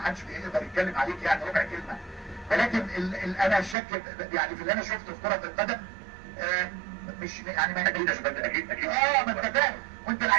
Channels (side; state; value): left; drops out; at 3.8 s